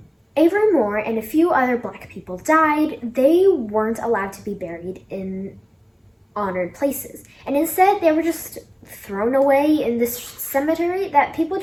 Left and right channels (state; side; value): identical; both; correlation 1.00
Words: Avery Moore and a few other black people died, they weren't allowed to be buried in honored places. And instead, they were just thrown away in this cemetery that people